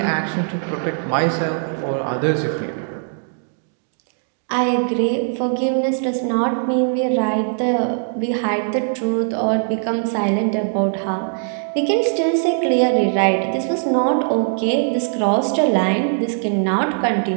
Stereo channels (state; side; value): silent; left; 66 dB below the other